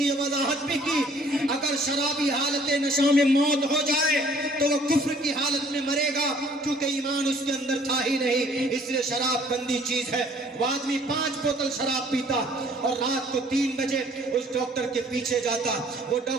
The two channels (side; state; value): both; normal; correlation 0.58